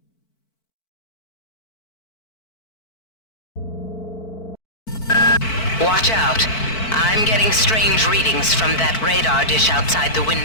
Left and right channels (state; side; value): late; right; 4.5 ms